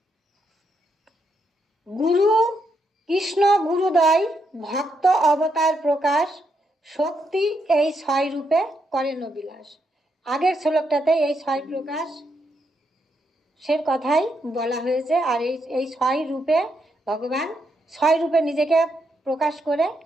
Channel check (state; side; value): normal; both; correlation 0.79